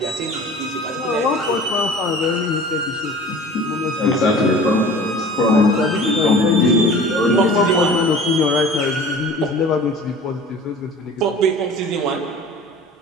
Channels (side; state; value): both; normal; correlation 0.43